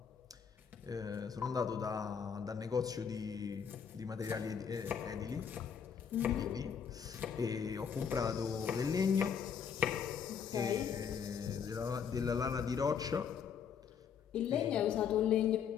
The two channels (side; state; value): right; quieter; 7.2 dB